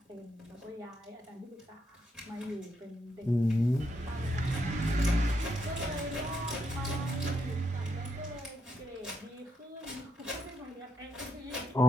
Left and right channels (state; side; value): normal; both; correlation 0.79